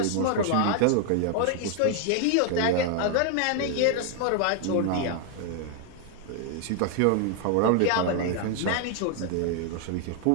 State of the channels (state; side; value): different; both; correlation 0.00